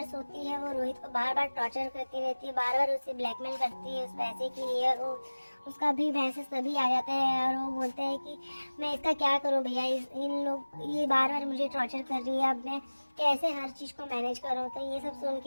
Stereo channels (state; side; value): inverted; both; correlation -1.00